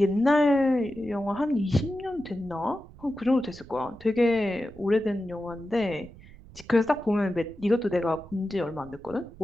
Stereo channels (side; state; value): right; noise; rumble, 20 dB below the sound